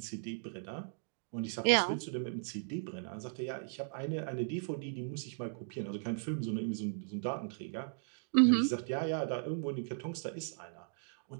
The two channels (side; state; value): left; silent; digital silence